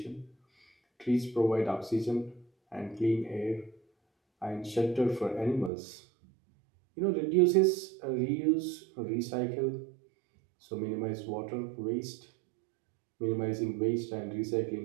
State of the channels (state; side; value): drops out; left; at 5.7 s